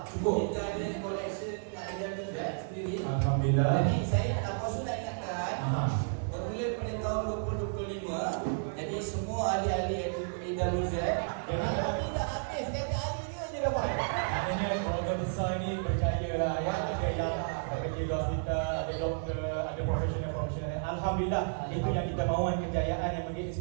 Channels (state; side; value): silent; left; 56 dB below the other